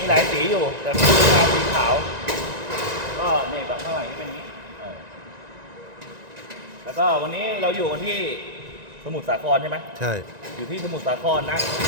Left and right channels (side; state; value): left; late; 1.9 ms